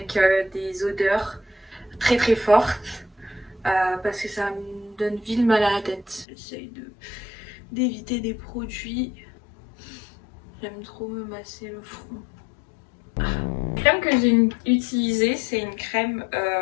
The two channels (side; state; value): right; drops out; at 6.2 s